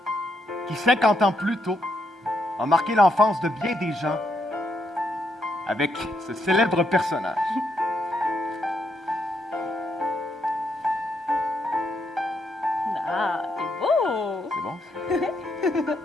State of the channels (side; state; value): both; normal; correlation 0.78